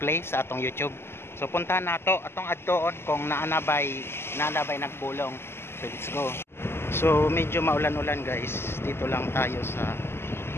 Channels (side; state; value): right; late; 0.12 ms